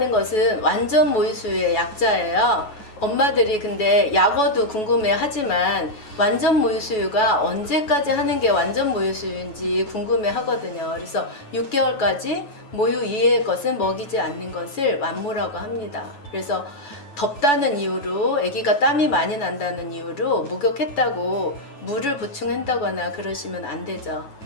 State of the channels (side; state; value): right; late; 9.3 ms